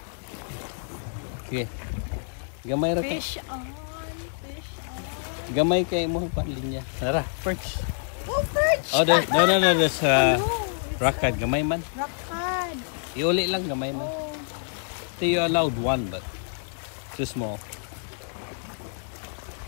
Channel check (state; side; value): silent; right; digital silence